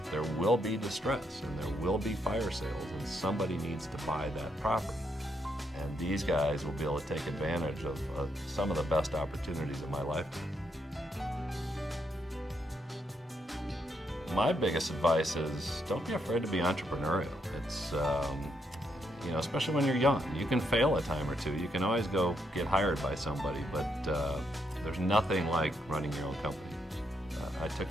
there will be distress and there will be fire sales and somebody needs to buy that property. And these guys will be able to take advantage of some of the best opportunities of my lifetime. My biggest advice is don't be afraid to be entrepreneurial. especially when you're young. You can fail a time or two. You can always go get hired by somebody, but there's nothing like running your own company. I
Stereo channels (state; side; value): normal; both; correlation 0.77